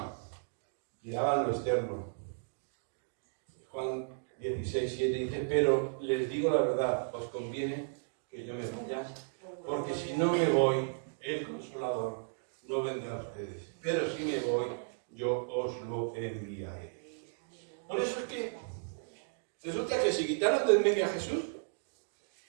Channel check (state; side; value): silent; left; digital silence